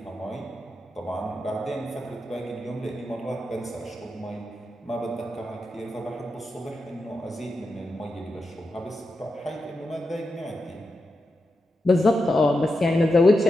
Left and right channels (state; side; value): normal; both; correlation 0.88